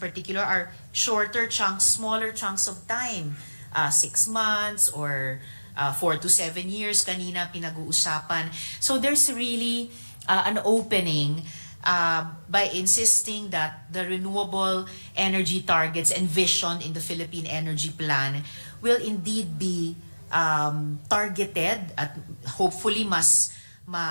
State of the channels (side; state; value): both; inverted; correlation -1.00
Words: particular are shorter chunks, smaller chunks of time. 6 months or 4 to 7 years kanina pinag-uusapan. So there's really an opening by insisting that the renewable energy targets envisioned in the Philippine Energy Plan will indeed be targeted at hopefully mas